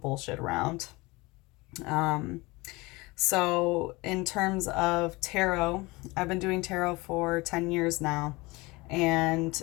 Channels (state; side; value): quieter; right; 23.2 dB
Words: bullshit around. So, in terms of tarot, I've been doing tarot for 10 years now. And